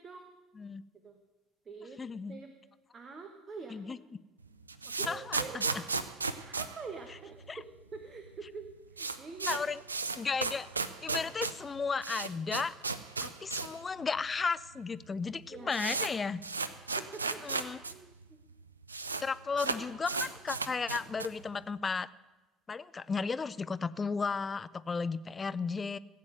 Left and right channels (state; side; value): normal; both; correlation 0.33